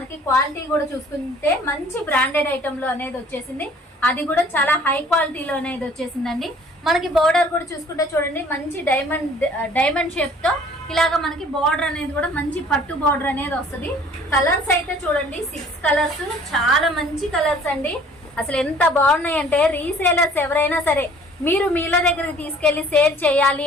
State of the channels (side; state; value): both; normal; correlation 0.53